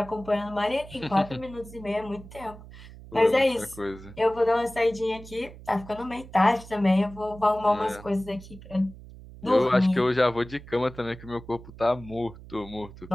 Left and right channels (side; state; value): right; noise; hum, 17 dB below the sound